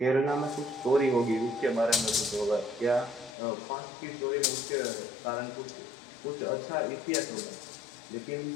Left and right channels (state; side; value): drops out; right; at 3.4 s